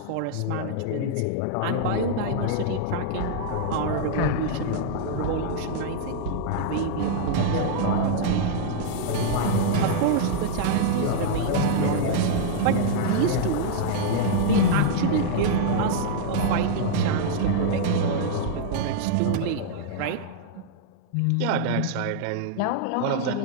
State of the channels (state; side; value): different; both; correlation -0.01